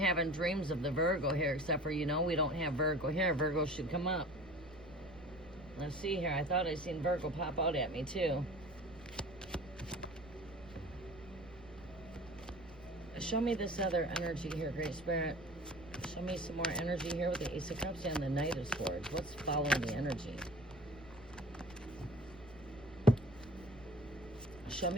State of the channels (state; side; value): noise; right; rumble, 20 dB below the sound